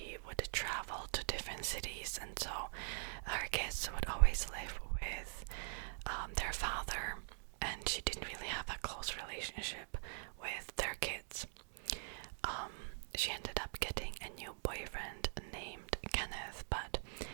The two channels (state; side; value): silent; left; digital silence